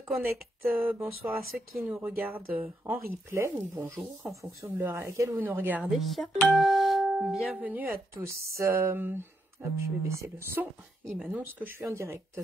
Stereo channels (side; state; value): both; normal; correlation 0.80